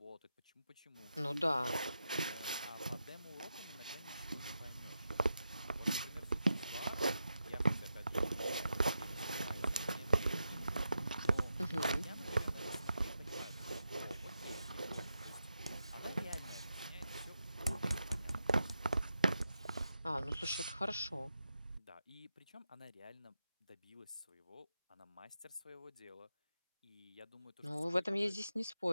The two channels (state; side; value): inverted; both; correlation -0.87